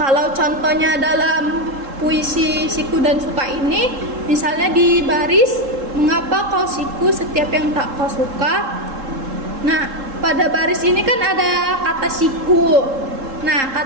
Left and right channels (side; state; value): left; late; 3.7 ms